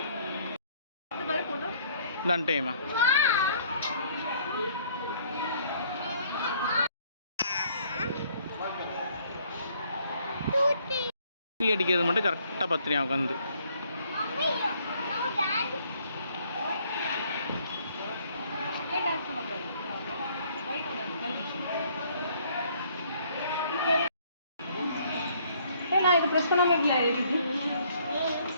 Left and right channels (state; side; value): inverted; both; correlation -0.63